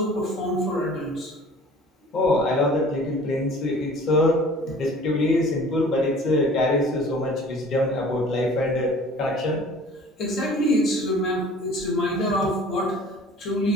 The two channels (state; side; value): normal; both; correlation 0.47